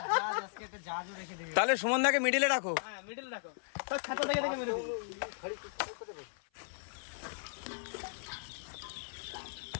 তাহলে সুমনদাকে মিডিলে রাখো। হ্যাঁ মিডল রাখো, স্যার খাতা দেখে দেখে মেরে দিই।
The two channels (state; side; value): silent; right; 53 dB below the other